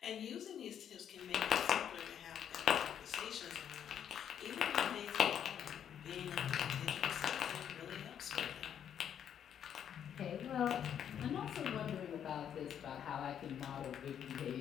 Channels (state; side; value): quieter; right; 9.1 dB